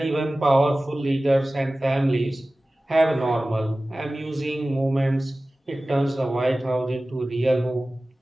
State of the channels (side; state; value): both; normal; correlation 0.97